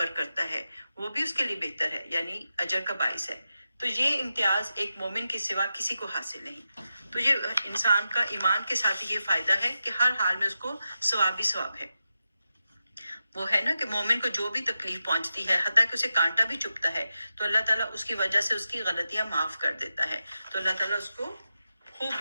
کرتا ہے، وہ بھی اس کے لیے بہتر ہے، یعنی اجر کا باعث ہے۔ تو یہ امتیاز ایک مومن کے سوا کسی کو حاصل نہیں۔ تو یہ انسان کا ایمان کے ساتھ یہ فائدہ ہے کہ ہر حال میں اس کو ثواب ہی ثواب ہے۔ وہ ہے نا کہ مومن کو جو بھی تکلیف پہنچتی ہے، حتیٰ کہ اسے کانٹا بھی چبھتا ہے، تو اللہ تعالیٰ اس کی وجہ سے اس کی غلطیاں معاف کر دیتا ہے، تو اللہ تعالیٰ اس کو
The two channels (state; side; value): inverted; both; correlation -0.90